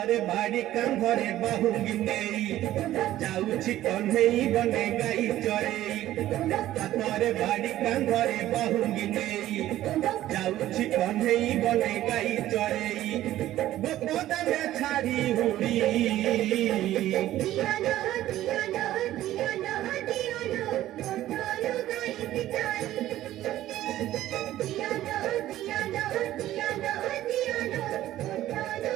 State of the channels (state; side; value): quieter; left; 14.0 dB